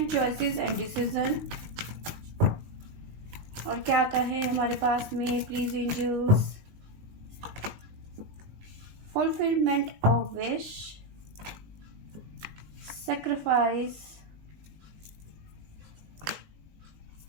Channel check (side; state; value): left; late; 19 ms